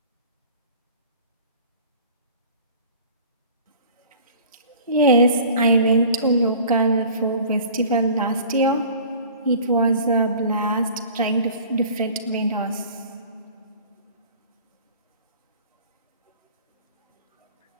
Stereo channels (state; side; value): inverted; both; correlation -0.46